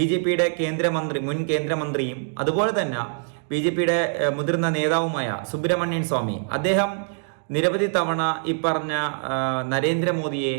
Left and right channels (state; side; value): silent; left; 63 dB below the other